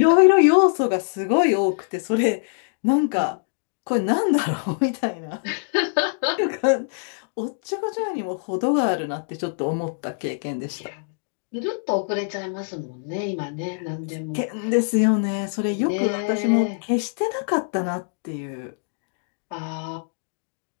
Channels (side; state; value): right; silent; digital silence